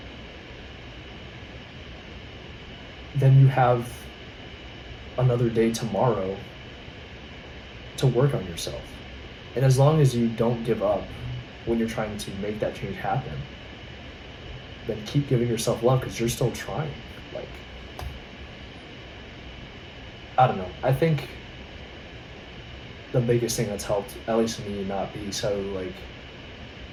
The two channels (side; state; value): both; identical; correlation 1.00